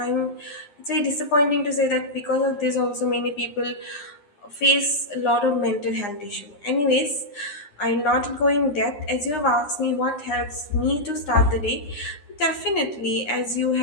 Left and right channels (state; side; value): late; right; 9.9 ms